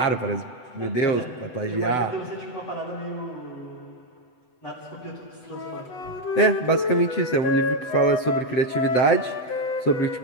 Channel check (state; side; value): late; right; 7.9 ms